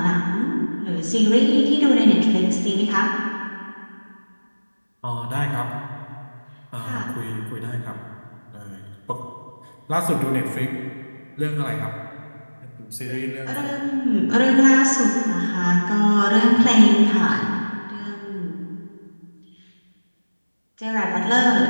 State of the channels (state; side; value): inverted; both; correlation -1.00